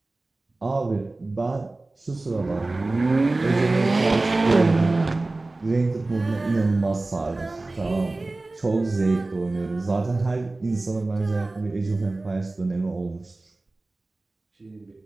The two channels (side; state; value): left; quieter; 3.1 dB